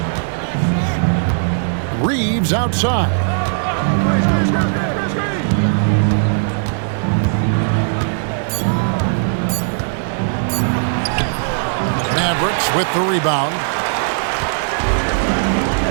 Reeves outside. Mavericks with the rebound.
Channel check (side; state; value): left; silent; digital silence